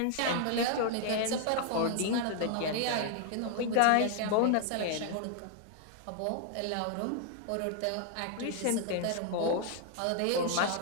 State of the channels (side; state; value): both; different; correlation 0.00